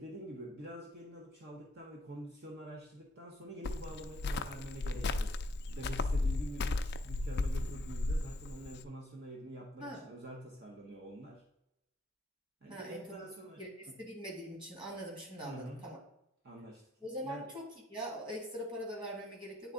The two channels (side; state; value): both; normal; correlation 0.71